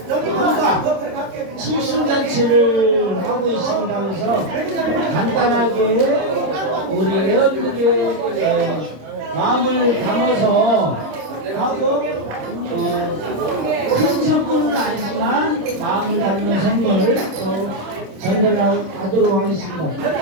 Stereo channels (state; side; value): late; left; 26 ms